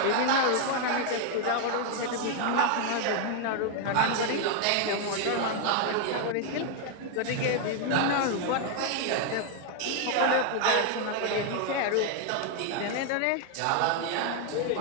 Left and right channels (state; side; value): different; both; correlation 0.01